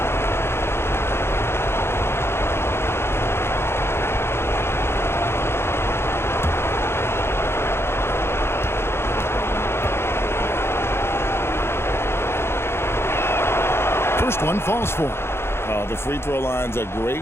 First one falls for him. The free throw line's a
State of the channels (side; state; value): right; late; 0.12 ms